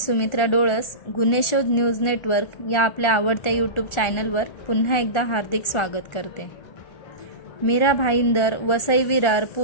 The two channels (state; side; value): late; right; 1.4 ms